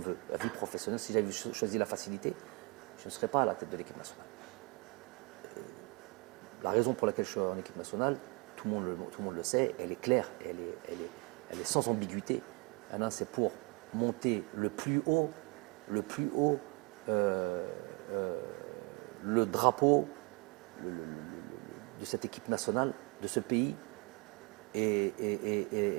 veut, la vie professionnelle. Si j'avais choisi la facilité, je ne serais pas à la tête de l'équipe nationale. La raison pour laquelle je suis en équipe nationale, tout le monde le sait, elle est claire, elle est sans ambiguïté. C'est pour monter le plus haut le drapeau de cette équipe nationale, de ce pays, et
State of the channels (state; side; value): quieter; left; 30.1 dB